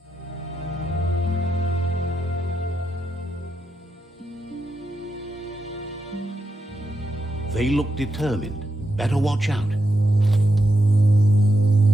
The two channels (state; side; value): normal; both; correlation 0.85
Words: They look determined. Better watch out.